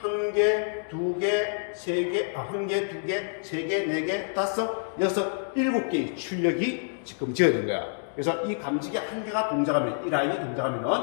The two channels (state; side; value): silent; right; digital silence